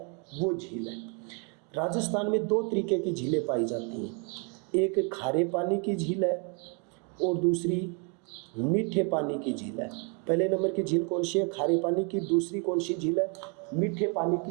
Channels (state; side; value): quieter; left; 36.3 dB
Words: वो झील है। राजस्थान में 2 तरीके की झीलें पाई जाती हैं, एक खारे पानी की झील है और दूसरी मीठे पानी की झील है। पहले नंबर की झील कौन सी है? खारे पानी की। दूसरी कौन सी झील है? मीठे पानी